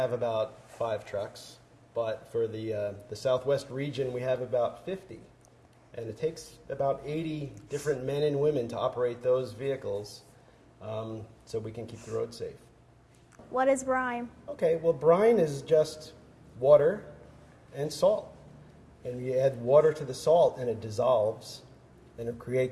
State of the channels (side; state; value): both; identical; correlation 1.00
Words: about 5 trucks, but for the Southwest region we have about 50. And it takes about 80 different men and women to operate those vehicles so we can keep the road safe. What is brine? Okay, well, brine is just water and salt. And you add water to the salt and it dissolves and it